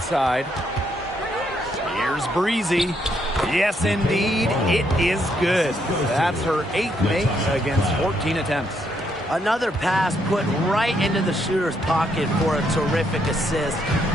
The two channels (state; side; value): normal; both; correlation 0.74